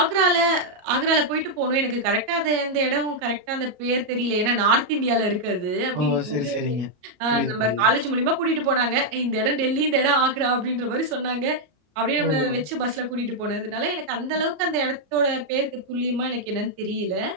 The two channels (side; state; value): left; late; 33 ms